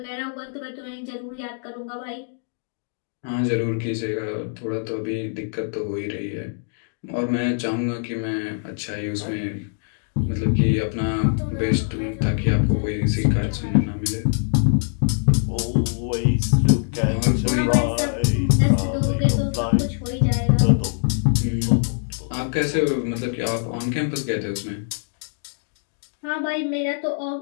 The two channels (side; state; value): right; silent; digital silence